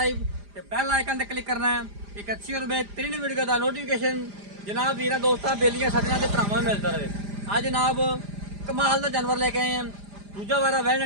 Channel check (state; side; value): late; left; 5.0 ms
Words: ਤੇ ਬੈਲ ਆਈਕਨ ਤੇ क्लिक करना है। एक अच्छी और बेहतरीन वीडियो का नोटिफिकेशन जनाब वीरा दोस्तों बेलियां सजना के भरावां में मिलता रहे। आज जनाब कमाल का जानवर लेके आए हैं, दूजा वारा